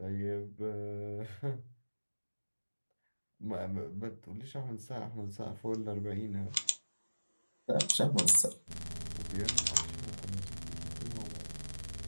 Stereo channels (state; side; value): inverted; both; correlation -1.00